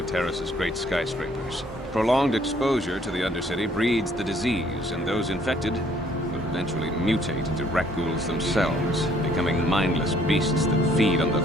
Taris's great skyscrapers. Prolonged exposure to the Undercity breeds the disease, and those infected will eventually mutate into rat ghouls themselves, becoming mindless beasts that feed on the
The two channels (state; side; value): normal; both; correlation 0.63